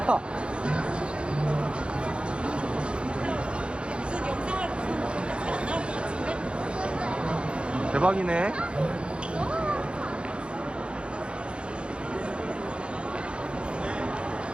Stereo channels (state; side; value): late; left; 0.057 ms